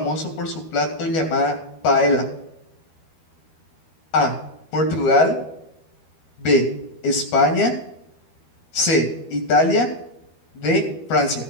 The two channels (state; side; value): late; right; 12 ms